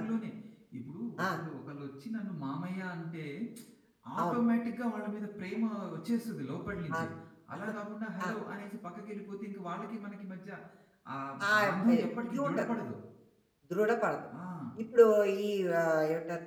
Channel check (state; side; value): identical; both; correlation 1.00